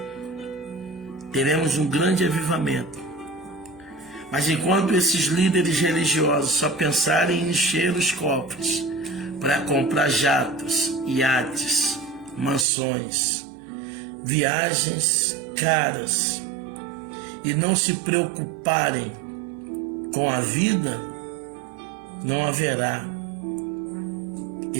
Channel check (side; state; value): left; drops out; at 12.7 s